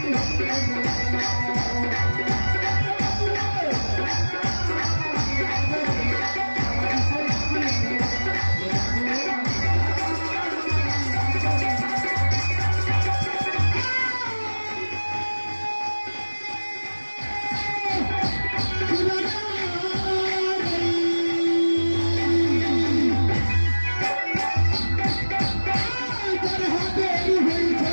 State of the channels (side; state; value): both; inverted; correlation -1.00